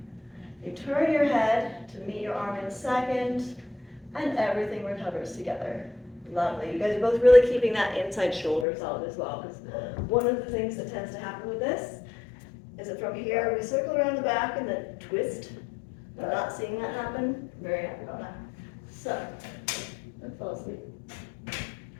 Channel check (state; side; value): drops out; right; at 8.7 s